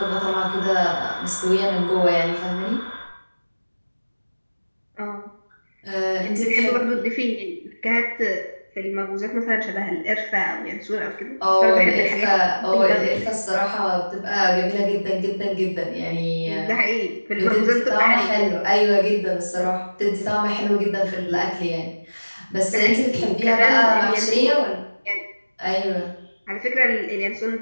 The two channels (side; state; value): both; inverted; correlation -1.00